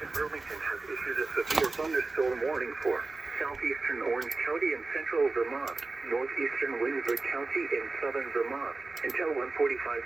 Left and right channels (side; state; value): left; quieter; 3.5 dB